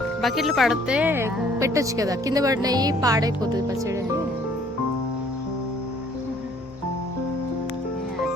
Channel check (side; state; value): both; normal; correlation 0.59